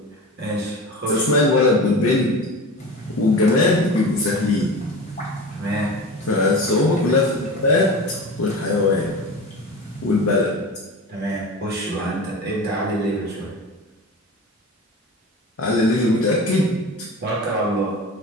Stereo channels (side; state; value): both; normal; correlation 0.31